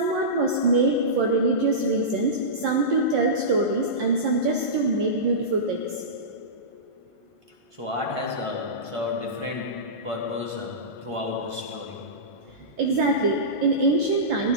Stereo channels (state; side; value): late; right; 1.5 ms